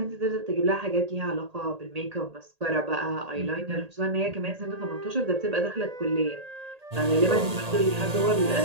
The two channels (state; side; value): late; left; 1.8 ms